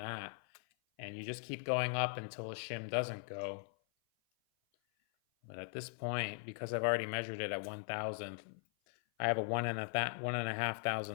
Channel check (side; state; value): right; silent; 51 dB below the other